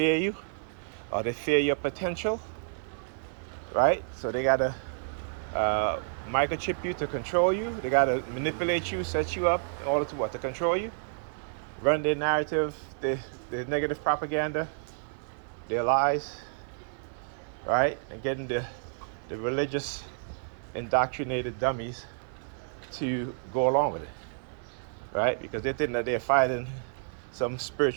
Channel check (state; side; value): silent; left; 58 dB below the other